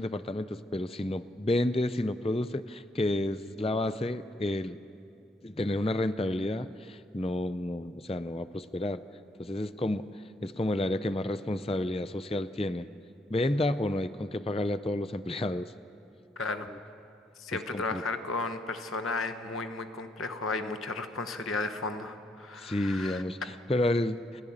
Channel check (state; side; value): normal; both; correlation 0.75